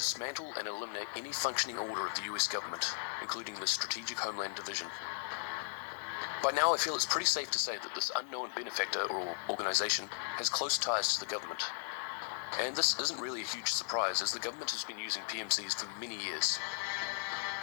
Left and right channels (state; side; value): silent; right; digital silence